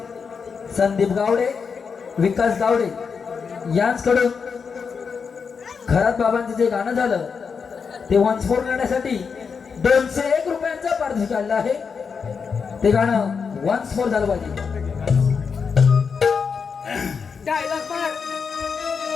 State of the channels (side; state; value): right; quieter; 5.8 dB